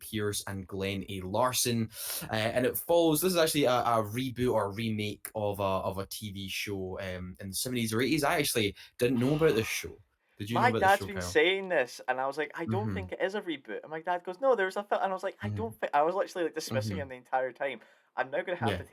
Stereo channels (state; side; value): identical; both; correlation 1.00